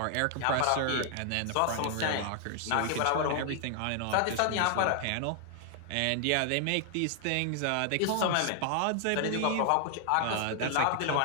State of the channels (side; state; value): both; different; correlation 0.00